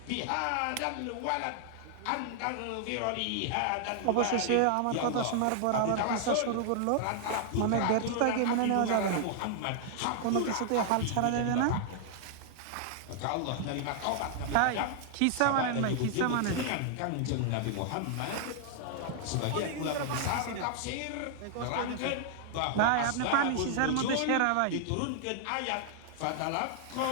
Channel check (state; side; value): different; both; correlation -0.01